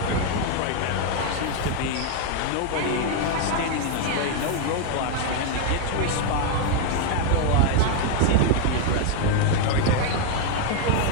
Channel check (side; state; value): both; different; correlation 0.00